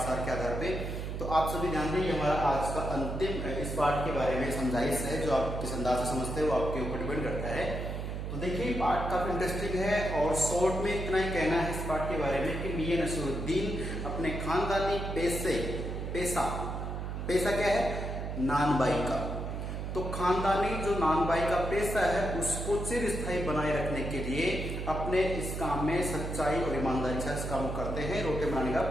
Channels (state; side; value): noise; right; hum, 4 dB below the sound